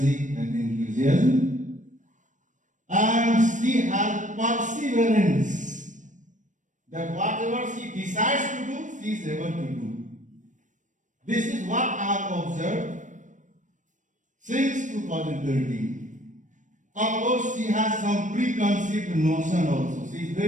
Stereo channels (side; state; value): left; late; 0.37 ms